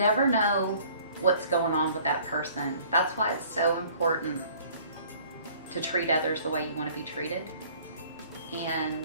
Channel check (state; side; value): inverted; both; correlation -0.54